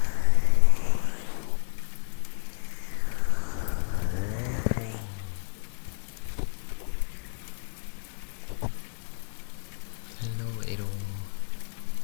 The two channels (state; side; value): silent; right; digital silence